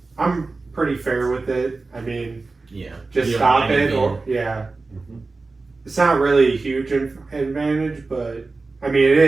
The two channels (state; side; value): quieter; left; 3.7 dB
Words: I'm pretty fair with it. I mean, Yeah. just You don't stop mind it, being- or yeah. Mhm. It's not really a huge advantage, but I mean it